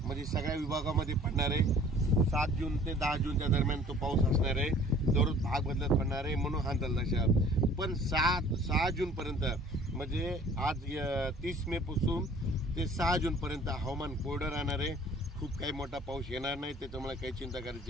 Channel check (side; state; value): both; normal; correlation 0.52